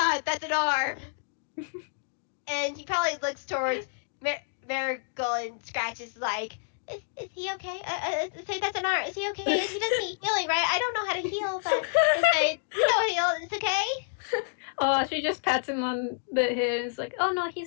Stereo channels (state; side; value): silent; right; digital silence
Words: that's an arm. And he probably looks towards Marigold, and Scratch is like, is he okay? Say that's an arm. Is he okay? He doesn't need healing, right? I don't know how to heal, but heal. It's okay. Oh, she just pats him on the head and is like, "Oh no,